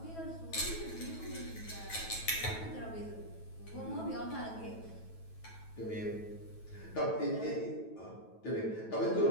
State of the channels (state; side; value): late; right; 9.2 ms